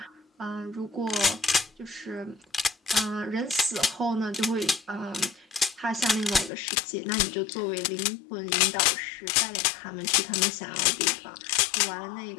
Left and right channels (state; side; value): drops out; right; at 6.5 s